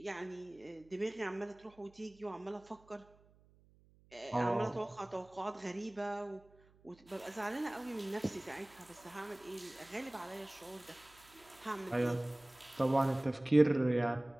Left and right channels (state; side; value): noise; right; hum, 28 dB below the sound